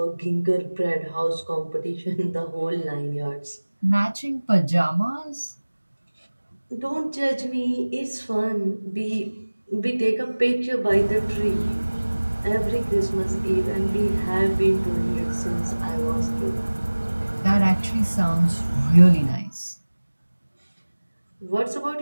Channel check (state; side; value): inverted; both; correlation -1.00